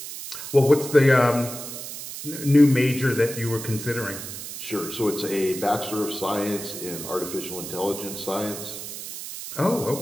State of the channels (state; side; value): noise; right; hiss, 9 dB below the sound